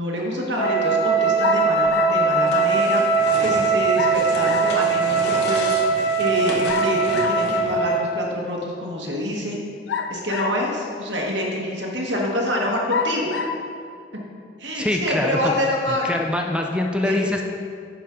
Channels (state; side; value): normal; both; correlation 0.25